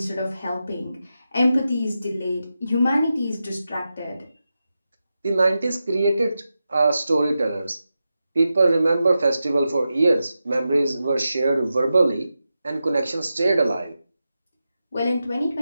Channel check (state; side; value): inverted; both; correlation -0.90